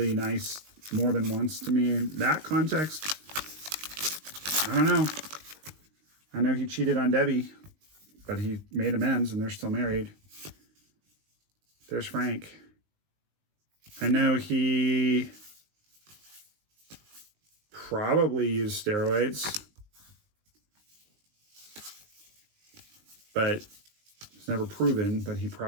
nice more than once to me in that context. I don't know. I know he cheated on Debbie, but he made amends and they're still married. There's Frank. I know he probably used steroids, but it's never proven, but he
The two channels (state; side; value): late; left; 19 ms